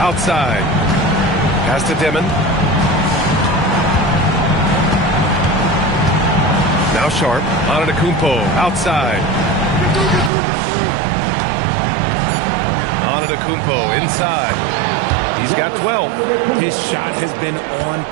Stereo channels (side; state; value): left; drops out; at 10.3 s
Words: Pass to Dimon. Now Sharp. Antetokounmpo outside. Antetokounmpo inside. He's got 12. His shot has been on